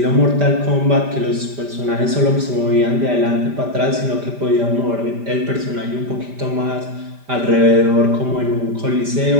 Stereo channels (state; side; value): late; left; 5.1 ms